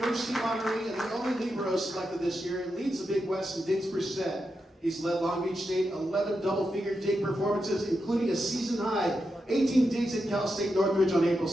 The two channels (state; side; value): normal; both; correlation 0.87